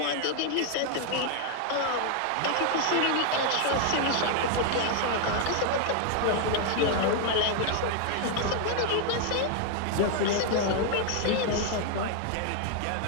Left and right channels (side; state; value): both; different; correlation 0.00